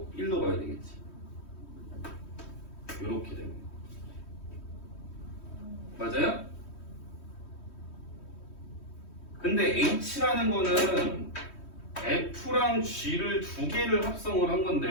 1로 가야 되겠지. 이렇게 되는 거야. 맞아요? 근데 h라는 거는 f랑 g를 두 개를 합성을 한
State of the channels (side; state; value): right; late; 3.1 ms